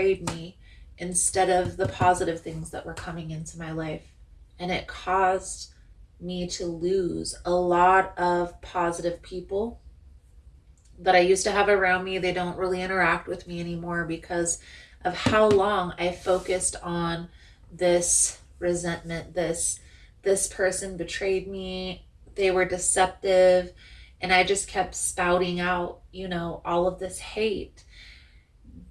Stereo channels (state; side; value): identical; both; correlation 1.00